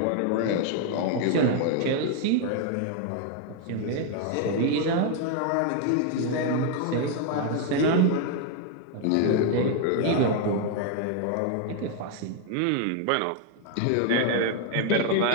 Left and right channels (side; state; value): both; different; correlation 0.00